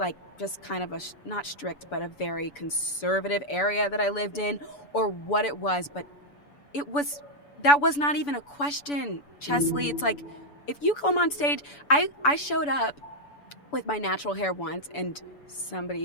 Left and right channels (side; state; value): right; late; 7.0 ms